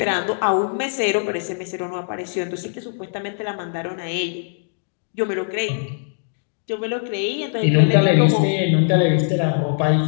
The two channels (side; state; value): right; silent; digital silence